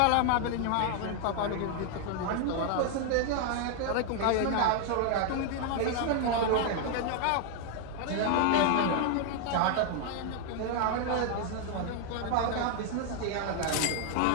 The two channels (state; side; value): different; both; correlation 0.00